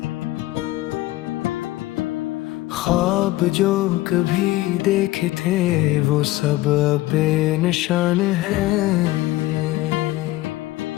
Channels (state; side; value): quieter; right; 17.3 dB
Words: ख्वाब जो कभी देखे थे वो सब अब बेनिशान है।